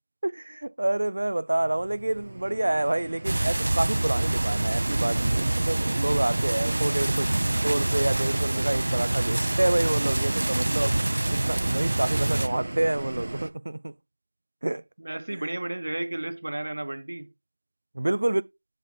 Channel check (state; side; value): inverted; both; correlation -1.00